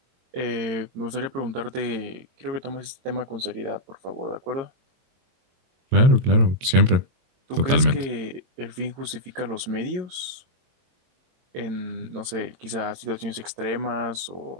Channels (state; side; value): late; left; 22 ms